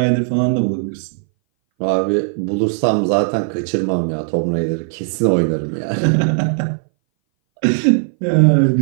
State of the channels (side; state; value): left; silent; 61 dB below the other